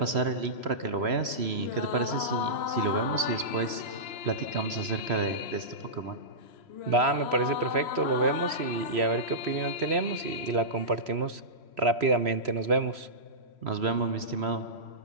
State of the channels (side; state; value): left; late; 3.0 ms